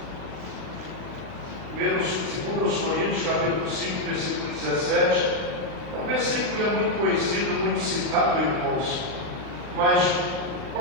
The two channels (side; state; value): left; late; 39 ms